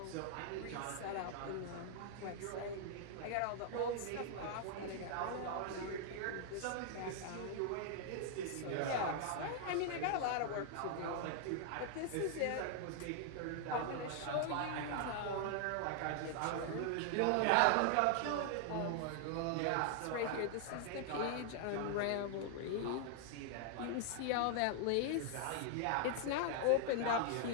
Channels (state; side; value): different; both; correlation 0.00